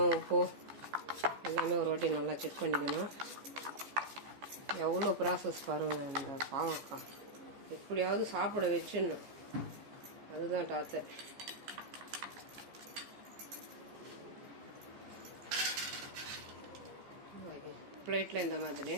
உப்பு எல்லாமே ஒரு வாட்டி நல்லா செக் பண்ணிக்கணும். எவ்வளோ ப்ராசஸ் பாருங்கள். இந்த பாவக்காய் எப்படியாவது சாப்பிட வச்சுன்னு அதுதான் டாத்தர். பிளேட்டில் இந்த மாதிரி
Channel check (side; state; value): left; late; 14 ms